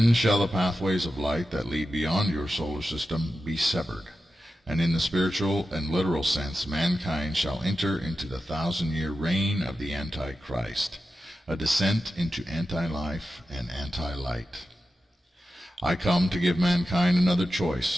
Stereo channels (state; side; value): normal; both; correlation 0.91